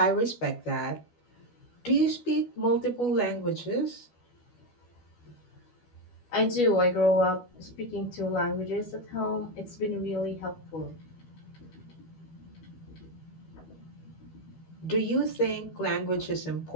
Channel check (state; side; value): late; right; 12 ms